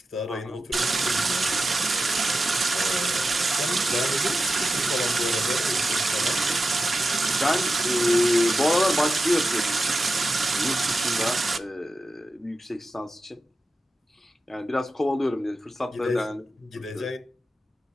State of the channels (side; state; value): both; normal; correlation 0.91